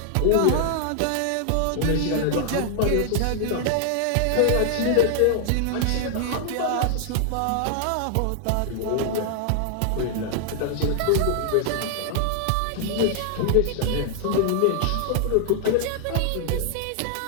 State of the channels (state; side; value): different; both; correlation 0.00